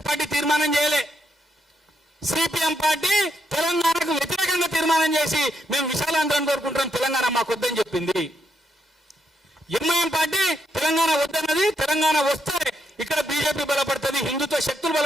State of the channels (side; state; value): both; normal; correlation 0.78